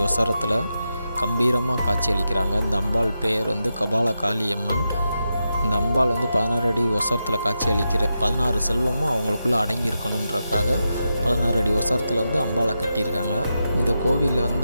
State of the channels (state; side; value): inverted; both; correlation -0.88